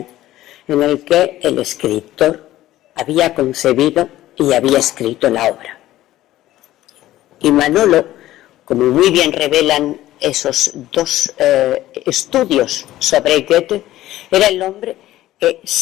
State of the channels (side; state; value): right; quieter; 14.8 dB